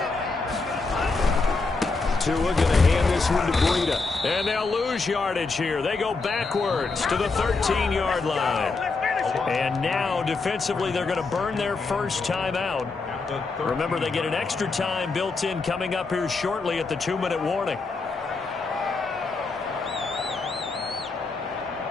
Tua going to hand this one to Breida. And they'll lose yardage here. They go backwards to the 13-yard line. And now, defensively, they're going to burn their first timeout. Remember, they get an extra time built in coming up here shortly at the 2-minute warning.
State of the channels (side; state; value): right; quieter; 4.0 dB